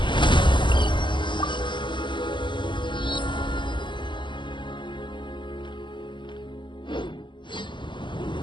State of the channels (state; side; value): late; right; 0.23 ms